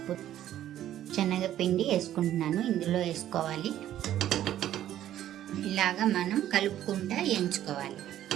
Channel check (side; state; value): left; quieter; 12.1 dB